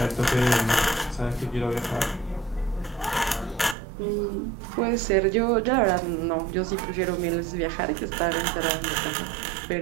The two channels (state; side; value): drops out; left; at 3.8 s